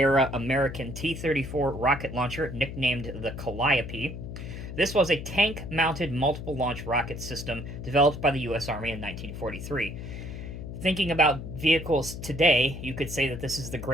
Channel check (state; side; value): noise; left; hum, 9 dB below the sound